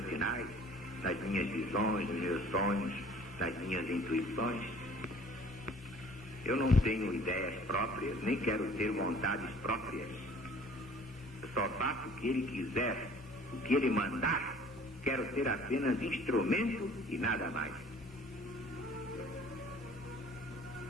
sinais nas minhas visões, nos meus sonhos, nas minhas intuições. Eu não tenho ideias próprias, nem quero ter vontades próprias. Eu só faço o que ele quiser, o que ele mandar. Quero ser apenas instrumento e nada mais.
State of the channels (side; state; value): both; normal; correlation 0.51